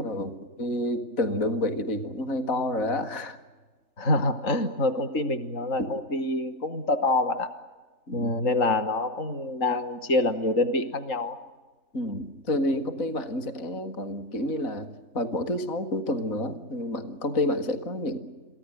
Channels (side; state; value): right; late; 3.4 ms